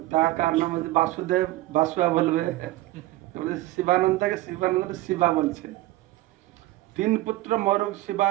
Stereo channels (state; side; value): quieter; left; 17.6 dB